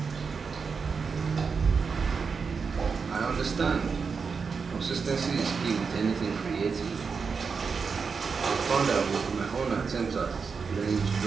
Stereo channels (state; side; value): quieter; left; 5.4 dB